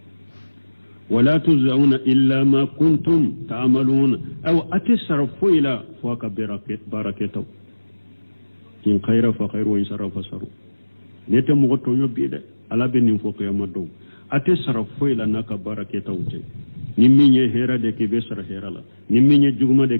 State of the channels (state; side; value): inverted; both; correlation -1.00